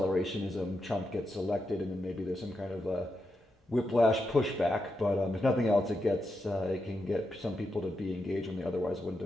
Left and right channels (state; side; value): normal; both; correlation 0.85